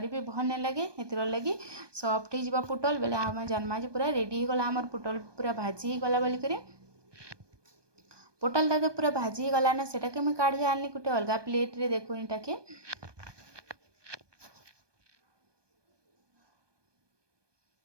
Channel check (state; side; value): late; left; 1.2 ms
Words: भी भल नहीं लगे हेतिर लगी सॉफ्ट हो पुटल बेले आम जानमा जे पूरा रेडी हो गला आमर पुटल पूरा भाजी ही गला बोलिक पुटलटा तो पूरा भाजी ही गला ना सेटा के मैं काढ़ी आनी गोटे अलग प्लेट रे। देखो इटा के